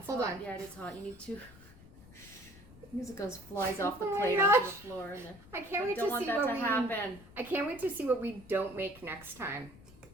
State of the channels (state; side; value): noise; left; rumble, 20 dB below the sound